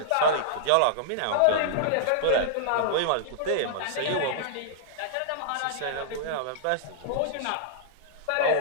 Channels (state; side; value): different; both; correlation -0.01